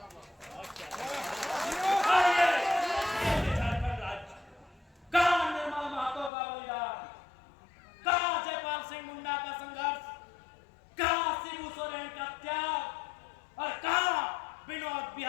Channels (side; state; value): right; drops out; at 6.3 s